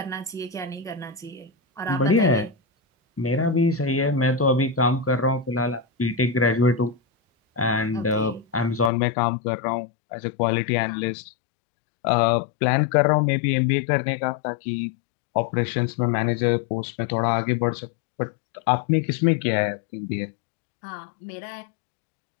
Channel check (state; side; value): drops out; right; at 8.9 s